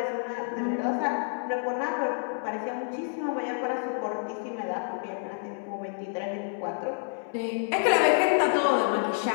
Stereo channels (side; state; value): right; silent; digital silence